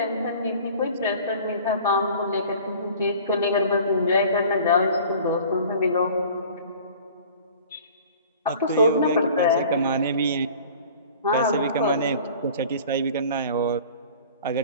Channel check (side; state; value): both; inverted; correlation -0.45